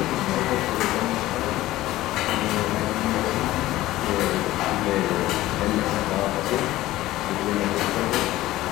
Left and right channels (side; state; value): right; quieter; 16.2 dB